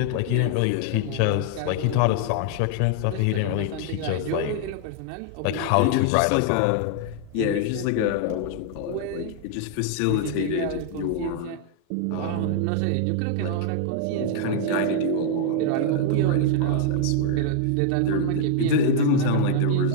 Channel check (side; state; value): both; different; correlation 0.00